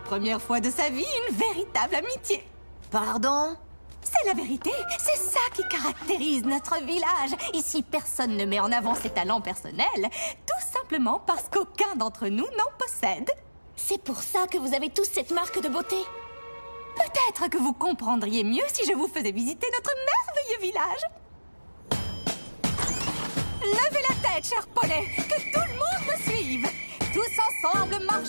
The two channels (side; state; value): both; inverted; correlation -1.00